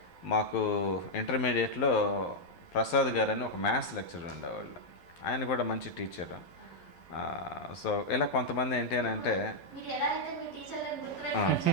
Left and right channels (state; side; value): late; right; 12 ms